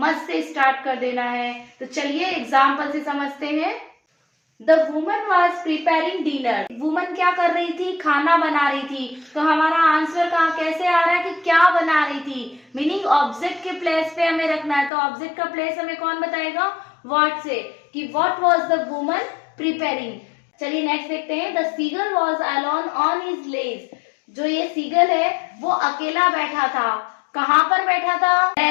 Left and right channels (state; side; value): drops out; right; at 14.9 s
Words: से स्टार्ट कर देना है। तो चलिए एग्जाम्पल से समझते हैं। The woman was preparing dinner. Woman क्या कर रही थी? खाना बना रही थी। तो हमारा आंसर कहाँ कैसे आ रहा है कि क्या बना रही थी? मीनिंग ऑब्जेक्ट के प्लेस पे हमें रखना है। तो ऑब्जेक्ट का प्लेस हमें कौन बताएगा? व्हाट से, कि what was the woman preparing. चलिए नेक्स्ट देखते हैं। The seagull was alone on his ledge. जो ये सीगल है वो अकेला बैठा था। कहाँ पर बैठा था?